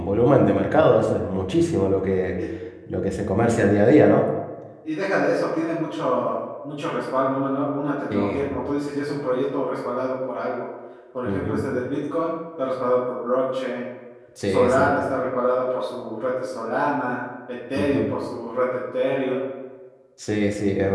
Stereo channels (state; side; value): identical; both; correlation 1.00